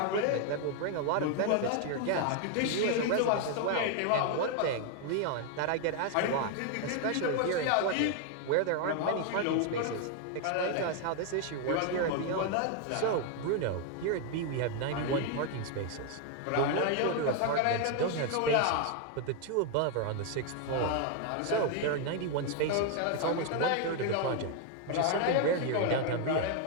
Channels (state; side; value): different; both; correlation 0.01